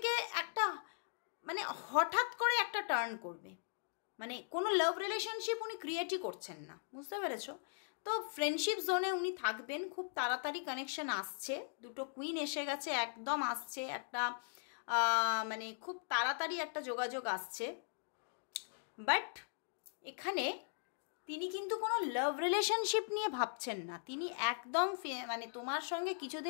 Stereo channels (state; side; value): silent; right; digital silence